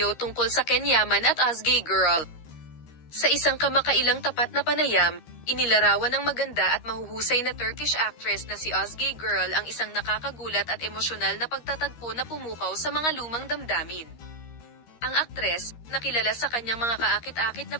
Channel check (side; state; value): right; late; 13 ms